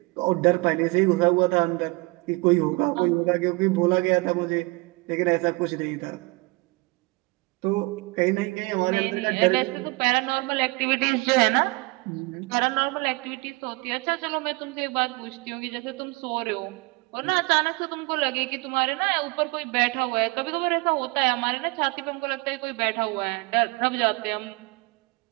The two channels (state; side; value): quieter; left; 26.0 dB